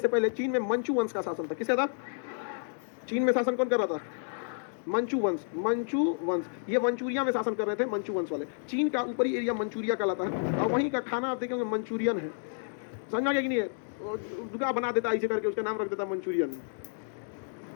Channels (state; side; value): silent; right; digital silence